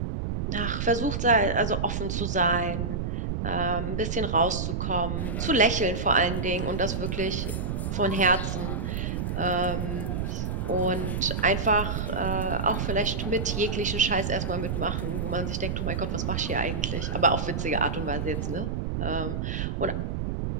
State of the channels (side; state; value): right; noise; rumble, 2 dB below the sound